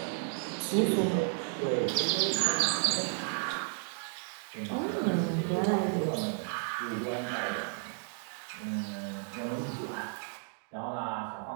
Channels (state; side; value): silent; left; 56 dB below the other